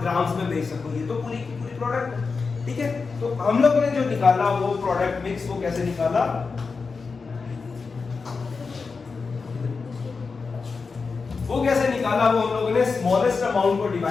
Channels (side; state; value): right; quieter; 4.7 dB